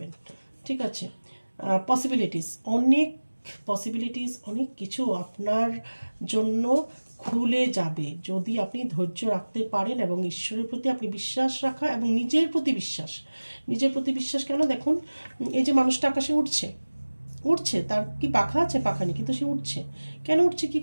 ঠিক আছে, পসিবিলিটিস অনেক কিছু আপনার জন্য খুলে যাবে যদি আপনি ধৈর্য রাখতে পারেন এবং ঈশ্বরের প্রতি আপনি বিশ্বাস রাখা এবং নিজের প্রতি বিশ্বাস কেন, দেখুন এই যে মানুষটা আকাশে উঠছে, তার কি পাখা আছে? পাখা নেই, কিন্তু সে উঠছে। কেন উঠছে, কি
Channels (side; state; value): both; inverted; correlation -1.00